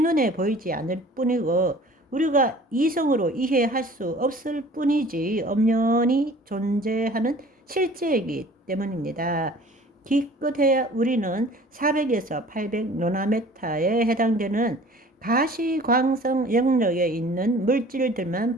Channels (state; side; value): normal; both; correlation 0.48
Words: 보이지 않을 뿐이고 우리가 이성으로 이해할 수 없을 뿐이지 엄연히 존재하는 실제이기 때문입니다. 기껏해야 우리는 400에서 800 노나메타에 해당되는 가시광성 영역에 있는 물질들만